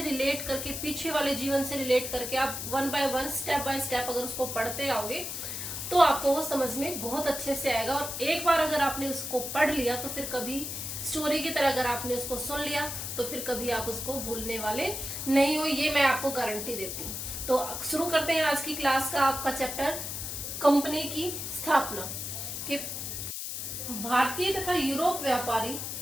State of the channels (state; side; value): noise; left; hiss, 5 dB below the sound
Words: रिलेट करके, पीछे वाले जीवन से रिलेट करके आप one by one, step by step अगर उसको पढ़ते आओगे तो आपको वो समझ में बहुत अच्छे से आएगा। और एक बार अगर आपने उसको पढ़ लिया तो फिर कभी स्टोरी की तरह अगर आपने उसको सुन लिया तो फिर कभी आप उसको भूलने वाले नहीं हो, ये मैं आपको गारंटी देती हूँ। तो शुरू करते हैं आज की क्लास का आपका चैप्टर, कंपनी की स्थापना। कि भारतीय तथा यूरोप व्यापारी